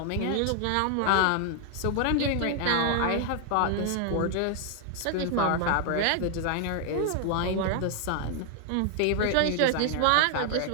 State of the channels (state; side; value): different; both; correlation 0.00